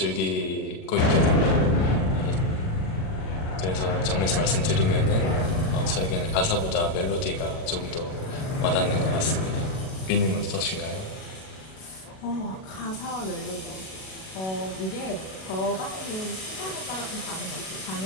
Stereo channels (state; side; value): late; right; 37 ms